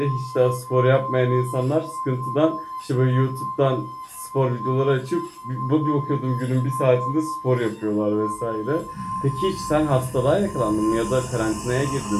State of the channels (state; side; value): identical; both; correlation 1.00